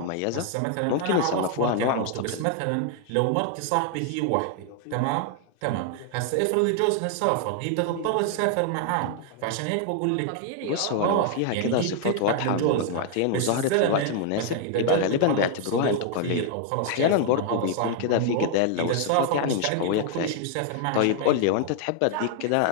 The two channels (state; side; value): different; both; correlation 0.00